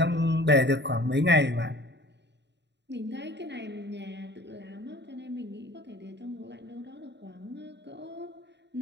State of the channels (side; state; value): left; late; 0.51 ms